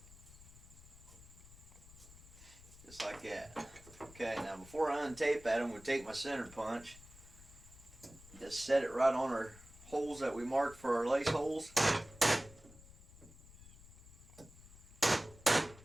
Just like that. Okay, now before I untape that, I'm going to take my center punch, just set it right on our holes that we marked for our lace holes.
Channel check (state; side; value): noise; left; rumble, 20 dB below the sound